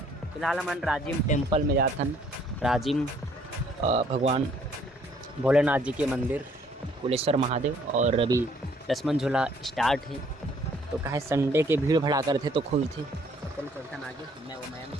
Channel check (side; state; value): both; normal; correlation 0.62